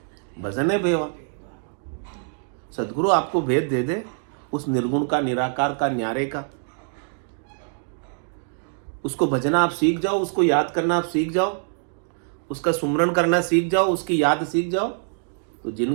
भजने भेवा। सदगुरु आपको भेद दे दे उस निर्गुण का, निराकार का, न्यारे का, उसको भजना आप सीख जाओ, उसको याद करना आप सीख जाओ, उसका सुमरण करना सीख जाओ, उसकी याद सीख जाओ, तो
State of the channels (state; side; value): silent; left; 62 dB below the other